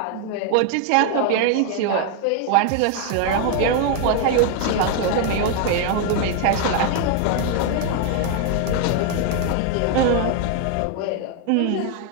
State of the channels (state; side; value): different; both; correlation 0.00